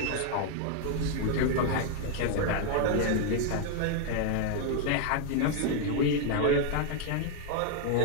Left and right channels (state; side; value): different; both; correlation 0.00